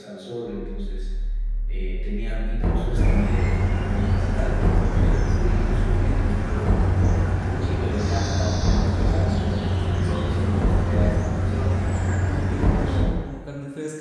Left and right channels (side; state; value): both; identical; correlation 1.00